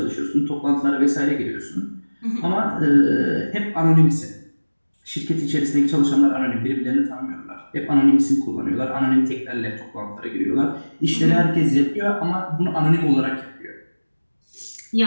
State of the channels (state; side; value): inverted; both; correlation -1.00